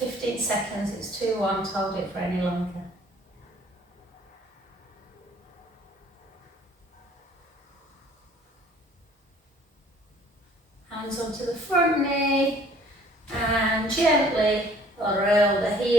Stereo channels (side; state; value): both; normal; correlation 0.55